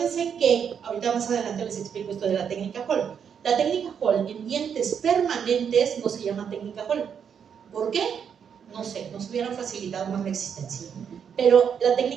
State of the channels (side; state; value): left; quieter; 7.5 dB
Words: que, ahorita más adelante les explico esto de la técnica Hall. La técnica Hall en dientes permanentes no se llama técnica Hall. ¿Por qué? No sé, nos hubieran facilitado más la existencia. Pero la